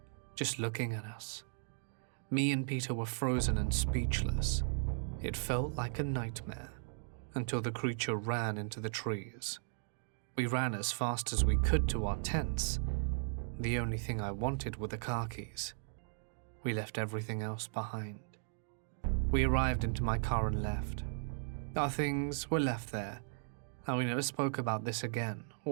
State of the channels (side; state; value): left; silent; digital silence